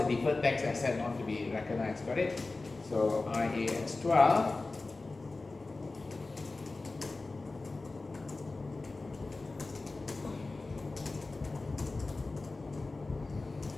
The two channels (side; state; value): right; quieter; 3.4 dB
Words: deferred tax asset not to be recognized. Got it? So IAS 12.